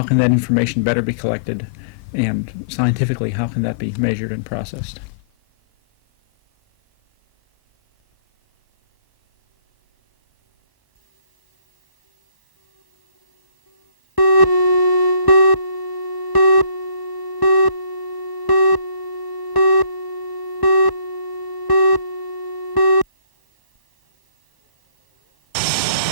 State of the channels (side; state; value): right; late; 1.0 ms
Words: can that information better be collected, and scientifically how can that be measured and processed.